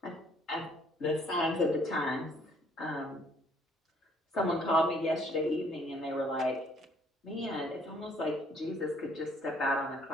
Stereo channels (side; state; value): both; normal; correlation 0.63